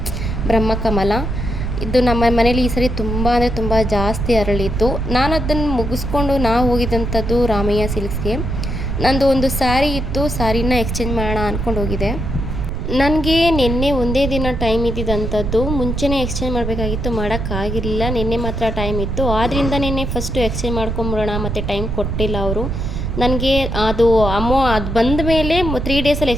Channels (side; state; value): right; noise; rumble, 3 dB below the sound